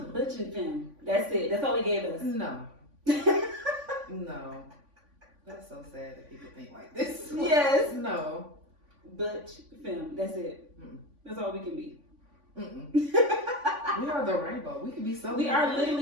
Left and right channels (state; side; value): late; left; 3.5 ms